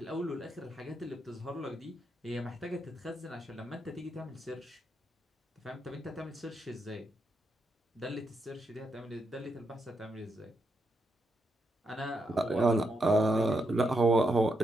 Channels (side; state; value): both; normal; correlation 0.81